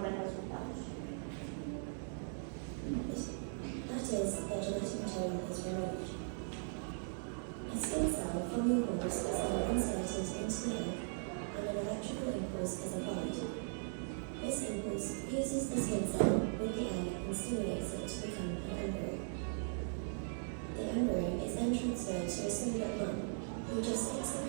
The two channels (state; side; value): silent; left; 52 dB below the other